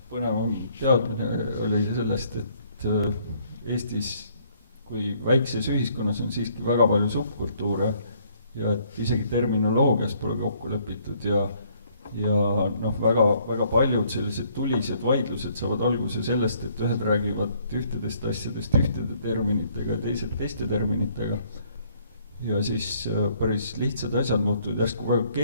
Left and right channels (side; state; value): both; inverted; correlation -0.64